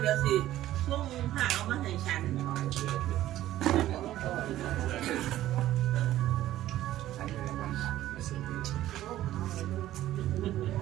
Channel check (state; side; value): quieter; left; 14.0 dB